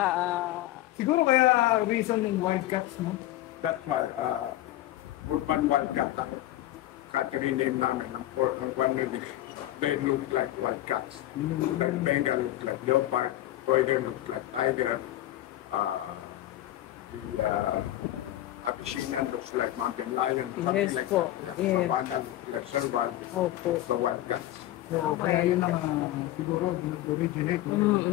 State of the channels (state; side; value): quieter; right; 14.7 dB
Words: Siguro kaya reason yung Wildcats, no? That's why, Urban Wildcat lang. Catherine name namin, ang one of these, they look like wildcats. Like Bengal looks like leopard, Poider looks like tiger, the Abyssinian looks like mountain lion, something Yes like po. that. Yes. Savannah looks like serval, Opo. so wildcats. So, kaya yun ang siguro nag-originate yung